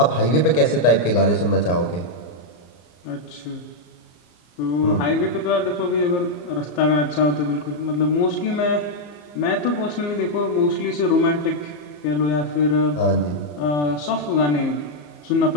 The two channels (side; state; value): right; late; 34 ms